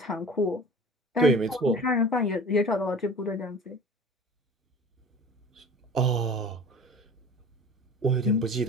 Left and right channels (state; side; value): normal; both; correlation 0.41